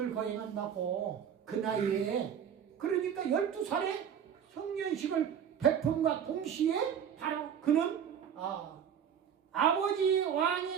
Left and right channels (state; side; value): quieter; left; 8.3 dB